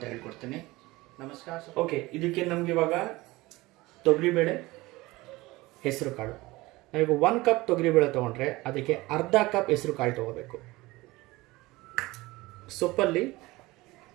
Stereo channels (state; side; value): quieter; left; 20.5 dB